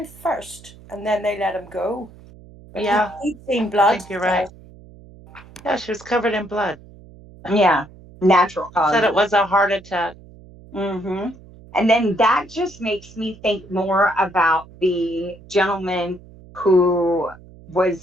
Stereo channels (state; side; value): noise; right; hum, 21 dB below the sound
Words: first, and then they let him go. But Yeah, he'd seen I blood. think you're right. Yeah, she was covered in blood. Yeah, natural causes. Said it was a heart attack. Mm-hmm. And then that just makes me think more about the gentleman who